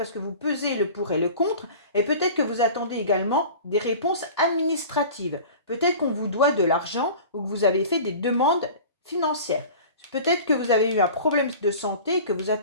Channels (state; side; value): inverted; both; correlation -0.40